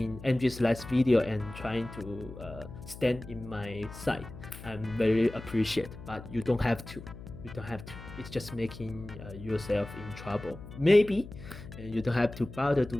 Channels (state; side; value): noise; left; hum, 14 dB below the sound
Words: NGSLive's video and trying to stand in my side. I'm very appreciate, but you don't have to. You don't have to. It's just making yourself in trouble. Maybe, and you don't have to bother